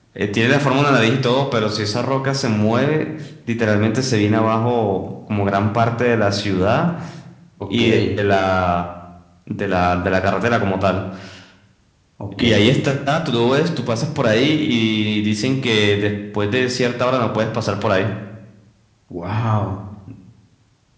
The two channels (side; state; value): both; identical; correlation 1.00